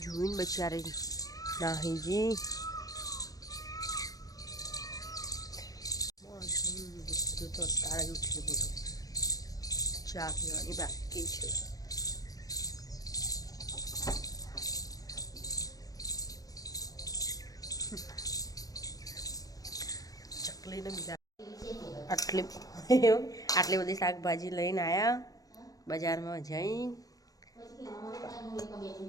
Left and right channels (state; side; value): late; right; 0.18 ms